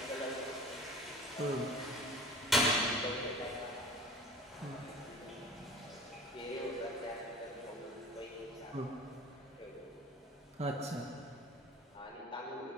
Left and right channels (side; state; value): both; normal; correlation 0.41